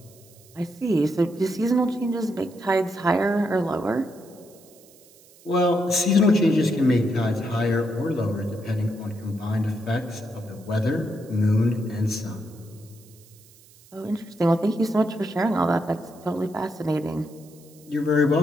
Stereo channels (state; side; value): noise; right; hiss, 26 dB below the sound